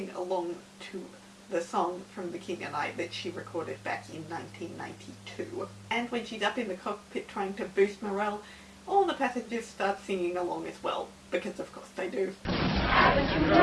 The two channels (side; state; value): both; identical; correlation 1.00